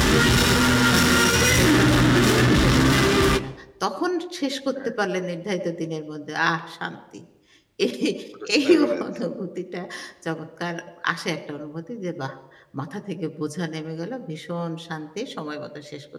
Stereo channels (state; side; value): identical; both; correlation 1.00